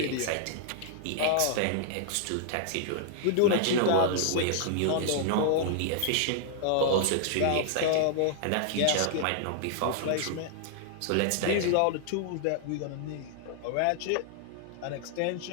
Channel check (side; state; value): both; different; correlation 0.00